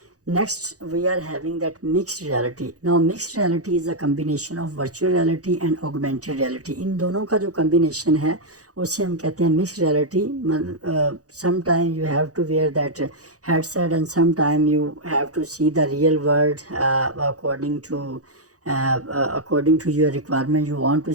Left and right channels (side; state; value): left; late; 0.67 ms